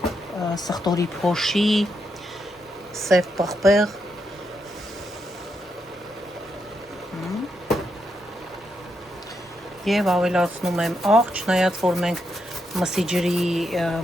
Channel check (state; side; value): normal; both; correlation 0.81